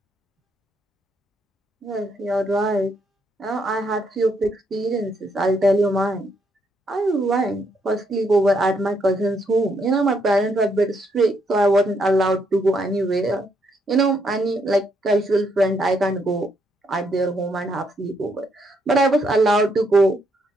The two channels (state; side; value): normal; both; correlation 0.75